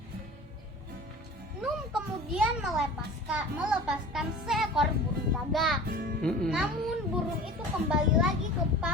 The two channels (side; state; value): both; normal; correlation 0.40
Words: Nuh kemudian melepaskan seekor burung gagak. Namun burung itu kembali lagi ke